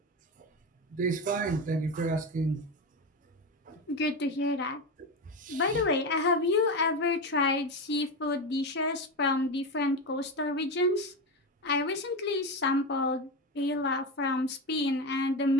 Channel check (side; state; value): both; normal; correlation 0.18